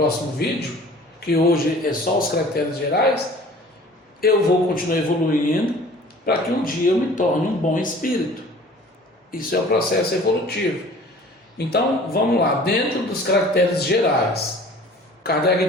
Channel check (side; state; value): both; normal; correlation 0.47